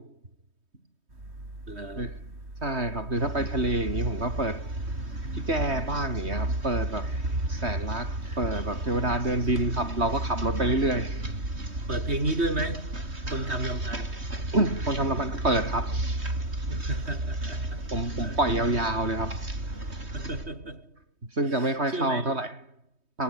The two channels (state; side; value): late; left; 3.2 ms